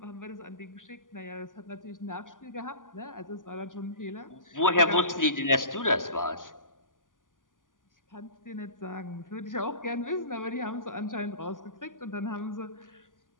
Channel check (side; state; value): right; late; 0.88 ms